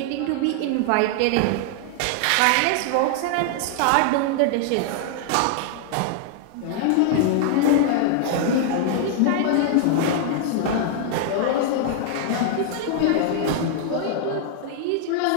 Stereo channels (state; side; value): different; both; correlation 0.00